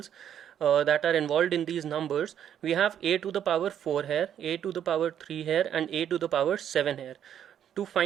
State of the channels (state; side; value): quieter; left; 9.6 dB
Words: that are involved in these numbers, we have a to the power 4 here, a to the power 3 here, and a to the power 7 here. To